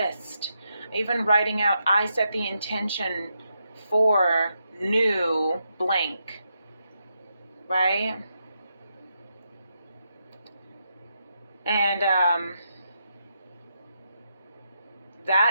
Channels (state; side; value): inverted; both; correlation -0.82